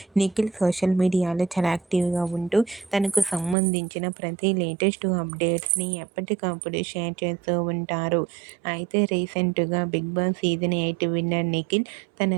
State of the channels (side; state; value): left; drops out; at 3.6 s